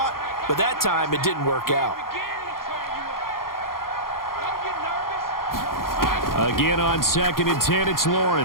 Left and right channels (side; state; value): right; late; 0.92 ms